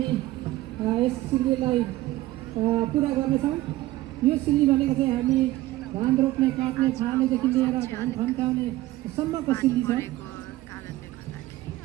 यस सिल्लीलाई पुरा गर्नेछौँ। यो सिल्ली भनेको चाहिँ हामी धान रोप्ने काट्ने छाड्नेदेखि लिएर धान फन्काउने सम्मको सिल्ली छ। कारणले गर्दाखेरि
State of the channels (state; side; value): quieter; left; 17.0 dB